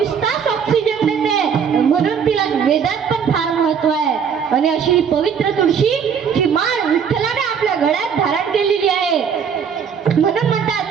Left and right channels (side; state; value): left; quieter; 7.1 dB